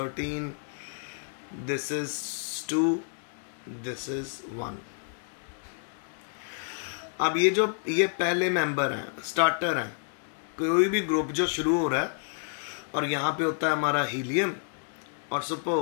this is 2, this is 1। अब ये पहले मेंबर हैं, स्टार्टर हैं। कोई भी ग्रुप जो शुरू हो रहा है और यहाँ पे होता है हमारा हीलियम और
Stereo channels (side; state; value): right; silent; 57 dB below the other